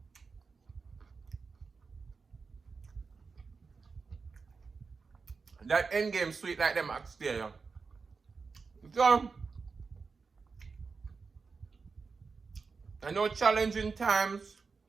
that end game sweet like them oxtail. So, I know challenging times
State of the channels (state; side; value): quieter; left; 4.8 dB